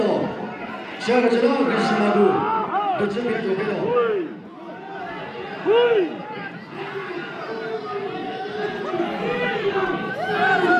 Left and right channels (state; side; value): identical; both; correlation 1.00